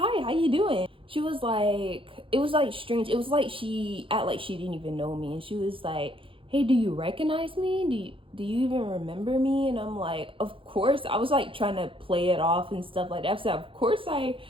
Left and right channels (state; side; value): late; left; 0.25 ms